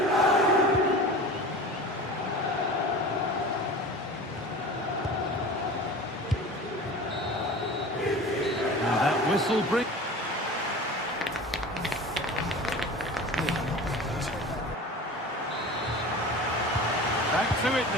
And that whistle brings... Back to it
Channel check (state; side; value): normal; both; correlation 0.36